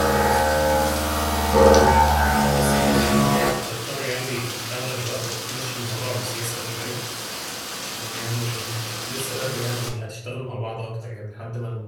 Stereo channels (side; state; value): both; identical; correlation 1.00